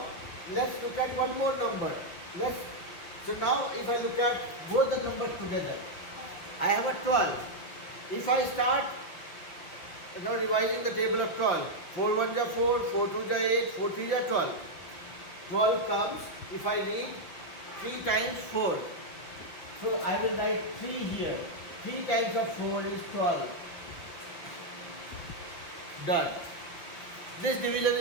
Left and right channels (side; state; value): right; late; 5.7 ms